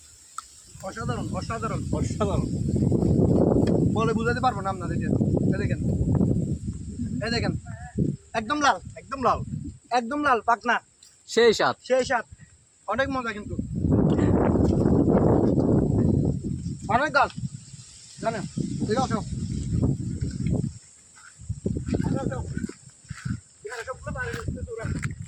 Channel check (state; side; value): identical; both; correlation 1.00